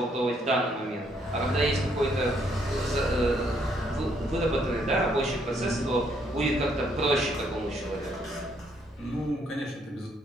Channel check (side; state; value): both; normal; correlation 0.70